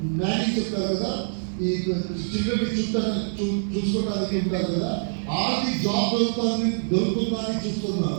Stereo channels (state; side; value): silent; left; digital silence